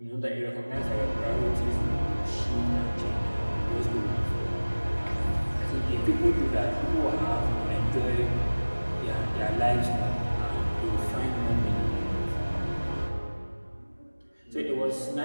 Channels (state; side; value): inverted; both; correlation -1.00